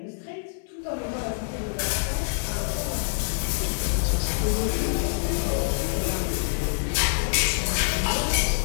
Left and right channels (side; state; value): right; silent; 60 dB below the other